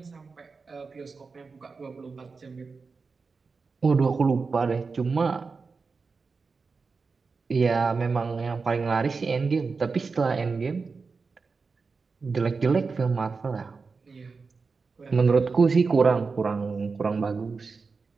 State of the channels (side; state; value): left; quieter; 4.6 dB